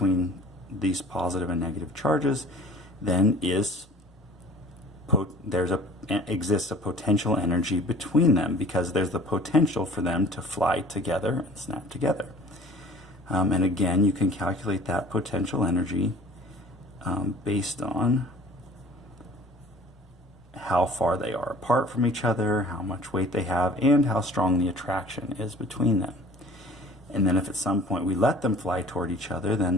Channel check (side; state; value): both; normal; correlation 0.47